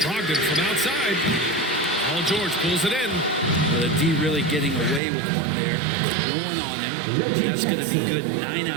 Brogdon from outside. Paul George pulls it in. The D really getting away with one there. No one on him. That's going to be good 9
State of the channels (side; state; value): left; drops out; at 5.0 s